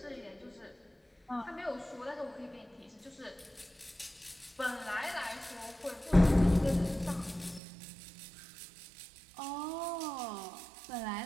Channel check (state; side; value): drops out; left; at 7.6 s